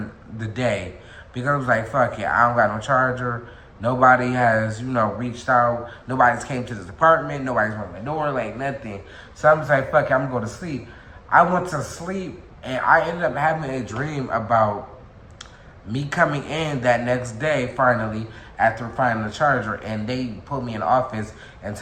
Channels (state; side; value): identical; both; correlation 1.00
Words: the day. Because I was like, fuck it, I don't got no charger. Nobody has, you know, reached out. Nobody's came to this apartment. Nobody's rung the door, like nothing. So I'm just like, fuck it, I'm going to sleep. I went to sleep, and I ended up having a dream about me coming in that next day, finally, after finding the charger, and they put me in the office and